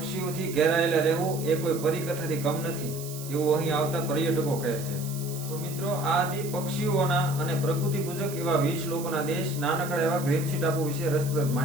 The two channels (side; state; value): right; noise; hiss, 12 dB below the sound